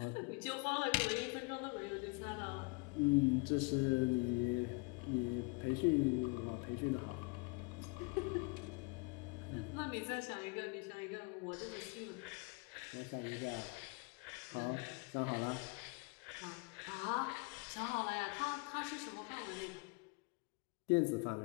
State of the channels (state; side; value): quieter; right; 29.9 dB